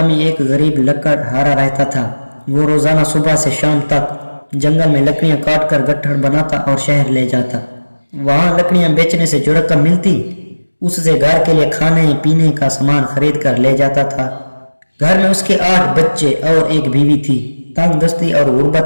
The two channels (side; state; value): both; inverted; correlation -1.00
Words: ایک غریب لکڑ ہارا رہتا تھا۔ وہ روزانہ صبح سے شام تک جنگل میں لکڑیاں کاٹ کر گٹھڑ بناتا اور شہر لے جاتا۔ وہاں لکڑیاں بیچنے سے جو رقم ملتی اس سے گھر کے لیے کھانے پینے کا سامان خرید کر لے جاتا تھا۔ گھر میں اس کے 8 بچے اور ایک بیوی تھی۔ تنگ دستی اور